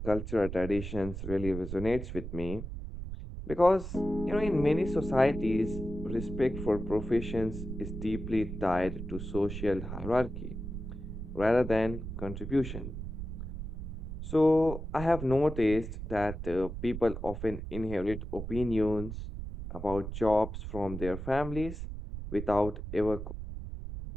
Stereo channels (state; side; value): noise; right; rumble, 7 dB below the sound